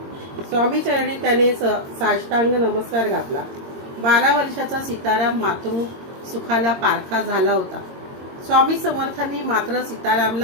स्वामी चरणी त्याने साष्टांग नमस्कार घातला. 12 वर्षाचा सीताराम मातृ सुखाला पारखा झाला होता. स्वामी समर्थांनी मात्र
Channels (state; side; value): late; left; 22 ms